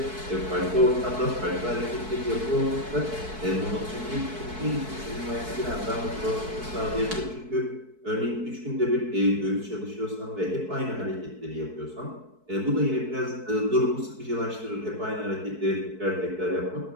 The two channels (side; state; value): left; late; 4.6 ms